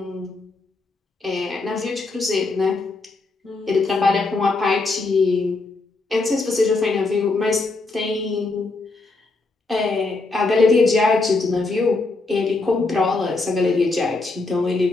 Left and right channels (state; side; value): quieter; right; 3.5 dB